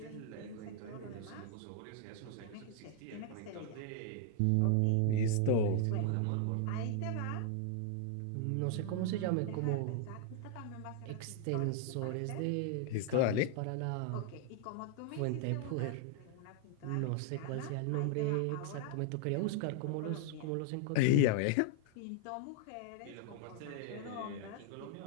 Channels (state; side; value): different; both; correlation 0.00